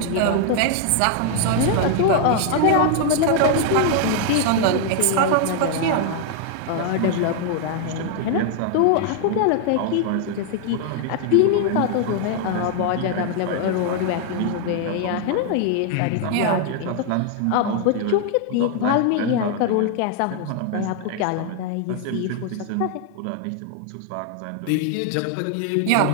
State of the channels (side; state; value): both; different; correlation 0.00